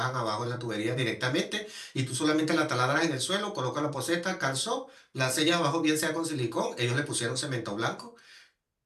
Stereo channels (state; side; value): identical; both; correlation 1.00